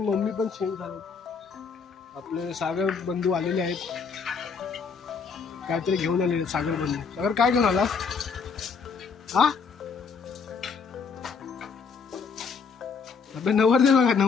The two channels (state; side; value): quieter; right; 5.6 dB